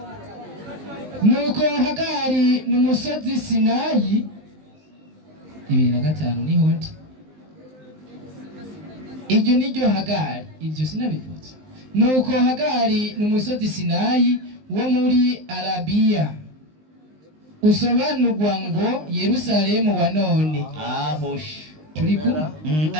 nuko Hagari n'umusozi Sinayi 2005 niho ndi iryo niryo Hagari ibyo sinabivutse nuko Hagari n'umusozi Sinayi wo muri Arabiya usobanurwa ngo Yerusalemu wa none ahosh turi kumwe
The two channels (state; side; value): late; left; 19 ms